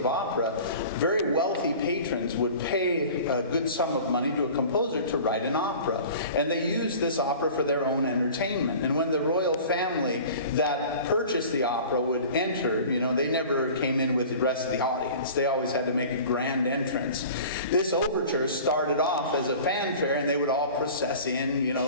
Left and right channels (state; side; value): inverted; both; correlation -0.42